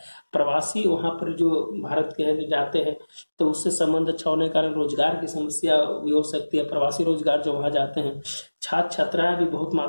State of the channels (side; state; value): both; inverted; correlation -1.00